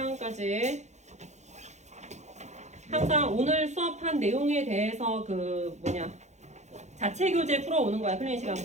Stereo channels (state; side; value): late; left; 0.33 ms